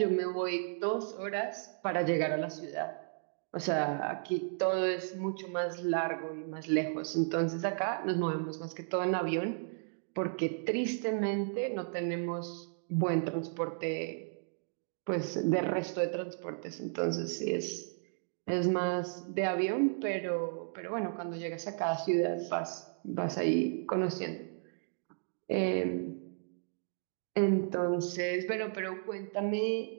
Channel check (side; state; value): left; silent; digital silence